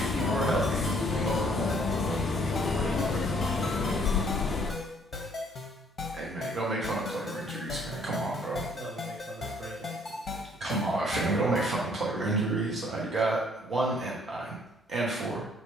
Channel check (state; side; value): normal; both; correlation 0.62